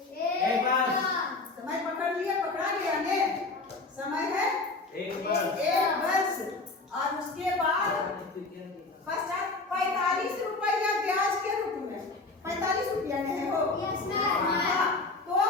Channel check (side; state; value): right; quieter; 3.5 dB